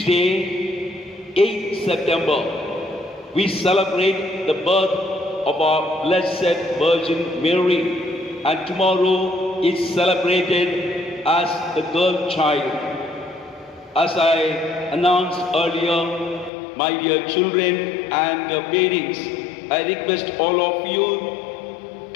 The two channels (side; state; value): right; drops out; at 16.5 s